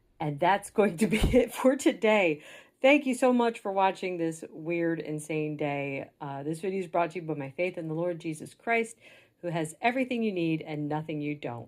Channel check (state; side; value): identical; both; correlation 1.00